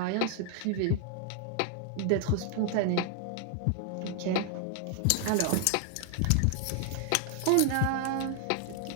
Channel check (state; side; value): different; both; correlation 0.00